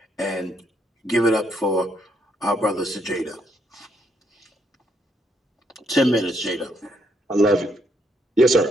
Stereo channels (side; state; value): both; normal; correlation 0.74